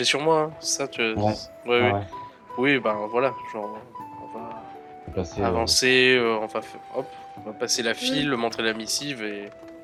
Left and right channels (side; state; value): both; identical; correlation 1.00